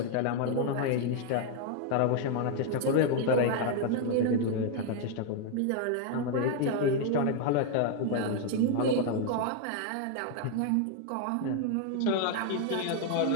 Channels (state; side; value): different; both; correlation 0.00